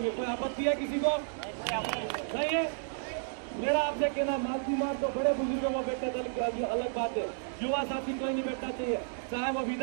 कोई आपत्ति है किसी को? नहीं है। मेरा आपसे कहना मालती मार तो बड़े बुजुर्ग वो बैठे अलग बात है, युवा साथी कोई नहीं बैठना चाहिए, चाहे वो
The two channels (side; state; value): left; silent; digital silence